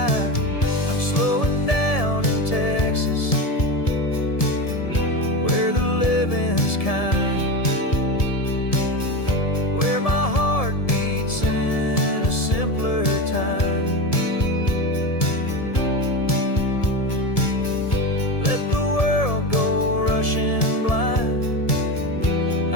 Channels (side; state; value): right; late; 1.7 ms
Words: slowing down in Texas, where the living's kind, where my heart beats in a simpler time.